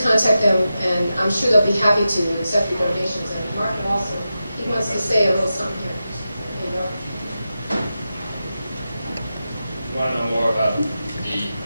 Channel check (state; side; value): inverted; both; correlation -0.91